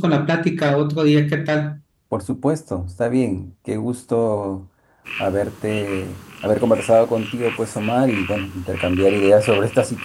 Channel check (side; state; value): both; identical; correlation 1.00